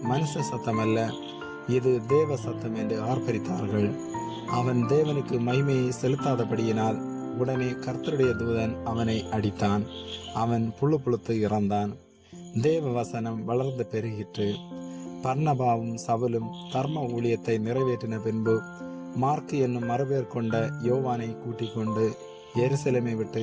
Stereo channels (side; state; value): both; identical; correlation 1.00